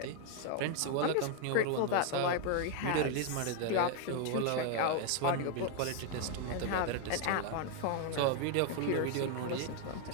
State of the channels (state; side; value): different; both; correlation 0.01